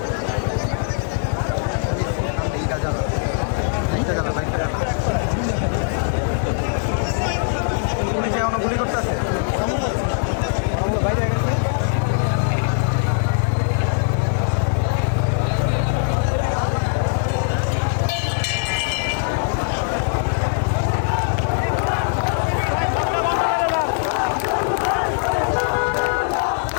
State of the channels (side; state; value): right; silent; digital silence